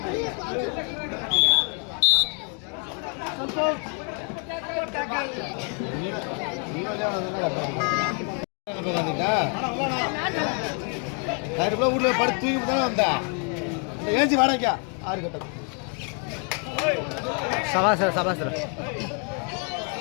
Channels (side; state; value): right; quieter; 39.7 dB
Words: ஊர்ல படுத்து தூக்கி தானே வந்தா ஏஞ்சி வாடகைக்கா 6 கட்டம் சபாசர சபாசர